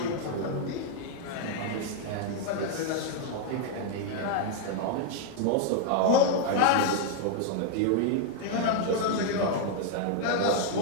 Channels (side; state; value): both; different; correlation 0.00